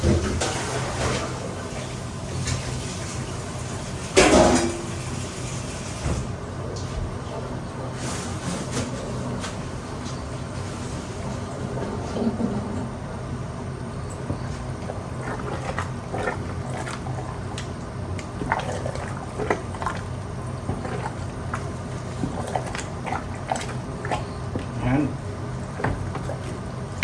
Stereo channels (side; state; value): both; identical; correlation 1.00